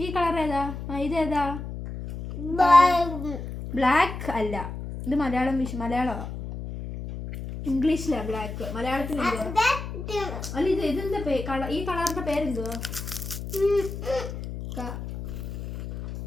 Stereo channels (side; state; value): left; noise; hum, 8 dB below the sound